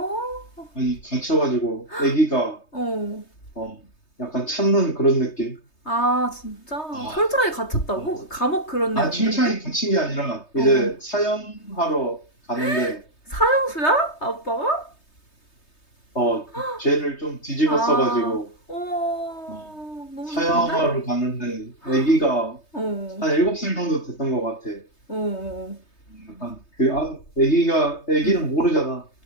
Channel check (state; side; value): late; right; 3.2 ms